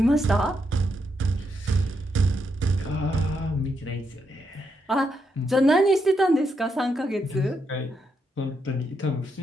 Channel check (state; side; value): normal; both; correlation 0.80